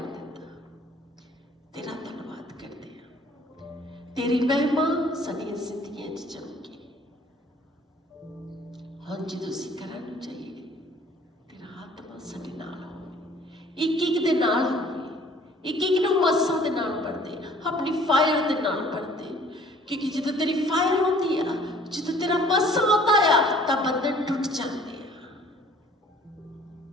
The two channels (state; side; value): normal; both; correlation 0.54